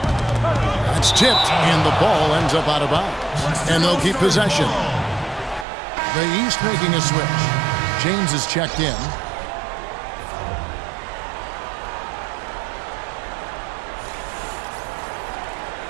It's tipped, and the ball ends up out of bounds. And they'll keep possession. The East making a switch. James is checked in.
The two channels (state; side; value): drops out; left; at 5.7 s